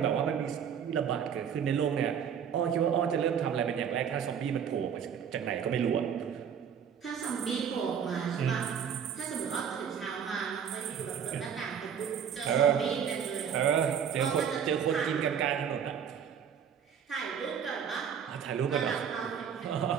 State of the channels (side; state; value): left; quieter; 7.8 dB